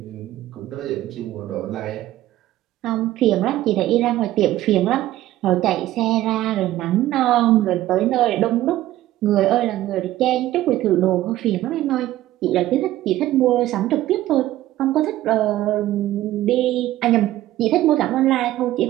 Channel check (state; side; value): quieter; left; 14.7 dB